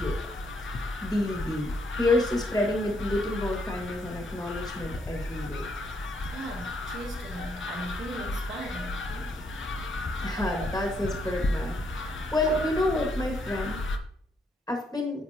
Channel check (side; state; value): both; normal; correlation 0.73